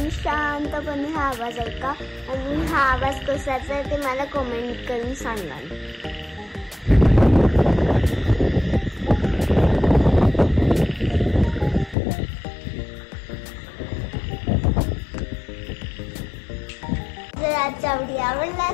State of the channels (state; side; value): drops out; right; at 12.0 s